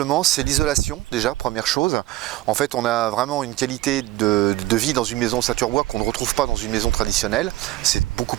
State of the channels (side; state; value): left; quieter; 17.0 dB